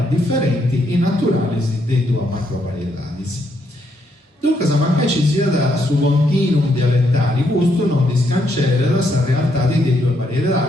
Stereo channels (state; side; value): normal; both; correlation 0.75